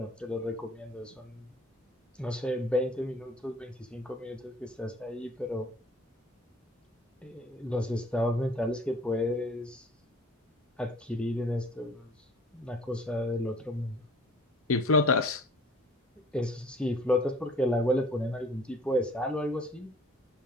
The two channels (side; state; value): both; normal; correlation 0.51